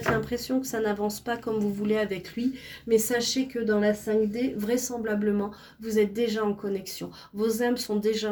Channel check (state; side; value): identical; both; correlation 1.00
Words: l'impression que ça n'avance pas comme vous voulez avec lui, mais sachez que dans la 5D, vraisemblablement, vous êtes déjà en connexion. Vos âmes sont déjà